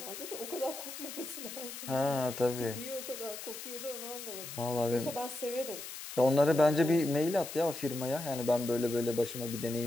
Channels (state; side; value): noise; left; hiss, 10 dB below the sound